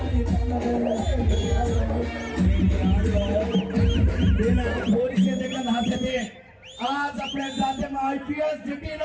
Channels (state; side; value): identical; both; correlation 1.00